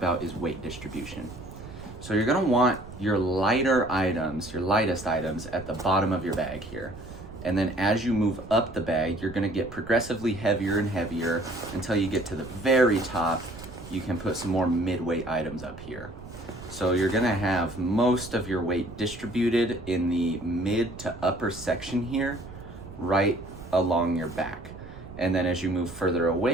is weight distribution. So you're going to want your lighter items, your lightest items at the bottom of your bag here. And then as you move up the bag, you're going to get progressively heavier and heavier until you get to the very top. You can put some more mid-weight items up here. So you're gonna have most of your weight distributed in the mid to upper section here, right along your back. And then as you move further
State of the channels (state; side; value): noise; right; rumble, 15 dB below the sound